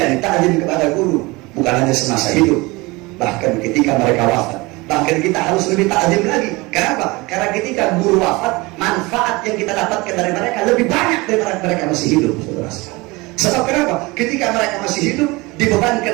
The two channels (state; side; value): quieter; left; 23.5 dB